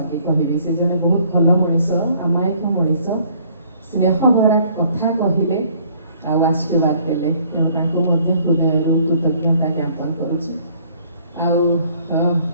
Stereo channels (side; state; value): both; inverted; correlation -0.60